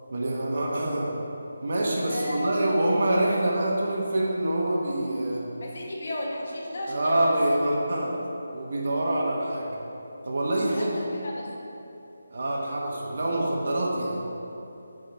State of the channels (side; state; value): both; inverted; correlation -0.91